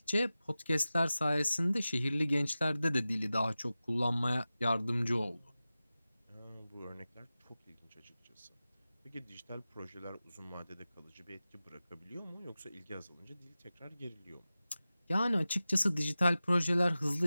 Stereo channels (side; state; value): both; inverted; correlation -0.95